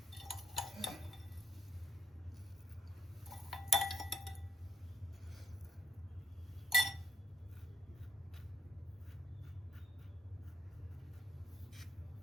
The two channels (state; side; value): normal; both; correlation 0.74